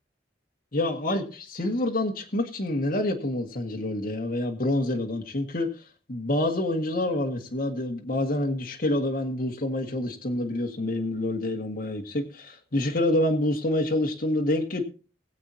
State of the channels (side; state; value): both; normal; correlation 0.49